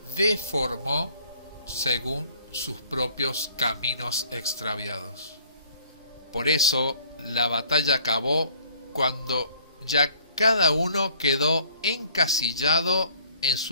deformó según sus propios caminos extraviados. Por eso la batalla acabó cuando ya cada uno quedó encasillado en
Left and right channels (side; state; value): both; inverted; correlation -0.57